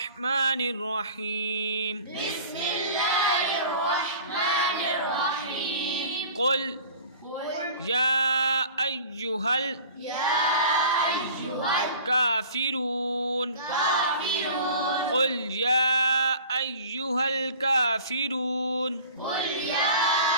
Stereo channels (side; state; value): both; inverted; correlation -0.44